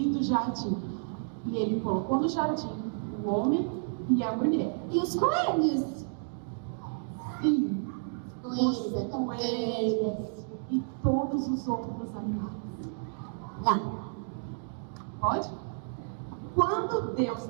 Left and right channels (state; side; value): silent; left; digital silence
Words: jardim. E Ele colocou no jardim o homem e a mulher. E os coelhos? Sim, Coelhos, coelhos. e todos os outros animais. Lá. Pode? Quando Deus